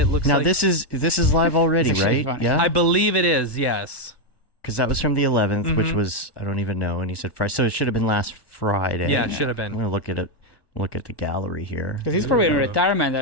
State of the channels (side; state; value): right; late; 1.1 ms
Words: looks now like... this is live already, right? Funny. Yeah, I believe it is, yes. because that was from the 11th, which was, I don't even know. And he said Friday, so it should have been last Friday. Yeah, it should have been. I'm gonna look at it. Look at the gallery here. Because he's probably in retirement.